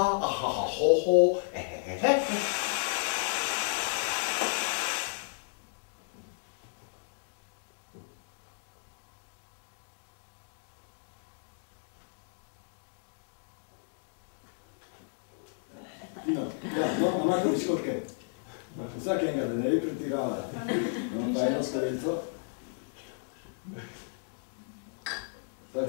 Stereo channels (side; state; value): right; silent; digital silence